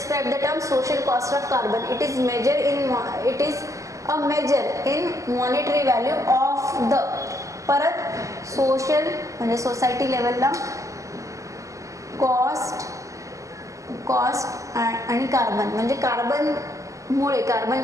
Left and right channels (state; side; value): late; left; 0.16 ms